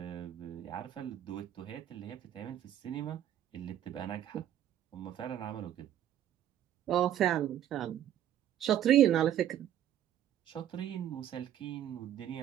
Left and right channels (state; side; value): quieter; left; 11.3 dB